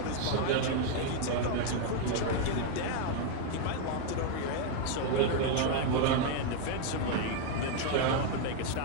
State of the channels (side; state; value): both; different; correlation 0.01